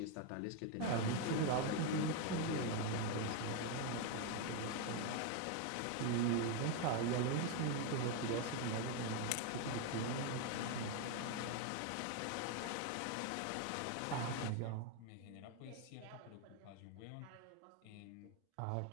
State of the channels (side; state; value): both; different; correlation 0.01